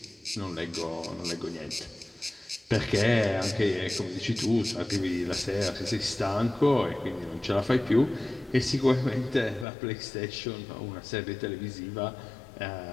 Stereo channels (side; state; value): right; drops out; at 9.7 s